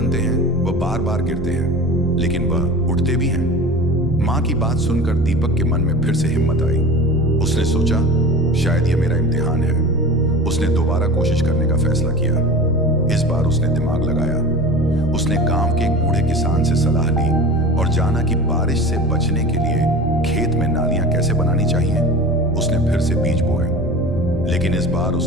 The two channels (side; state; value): both; normal; correlation 0.35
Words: हैं वह बार बार गिरते हैं, लेकिन वह उठते भी हैं। माँ की बात सुनकर दीपक के मन में फिर से हिम्मत आई। उसने सोचा, शायद यह मेरा इम्तिहान है। उसने दोबारा कोशिश करने का फैसला किया। इस बार उसने दिमाग लगाया। उसने गांव के एक बूढ़े किसान से सलाह ली और जाना कि बारिश से बचने के लिए खेत में नालियां कैसे बनानी चाहिए। उसने फिर से बीज बोए, लेकिन इस बार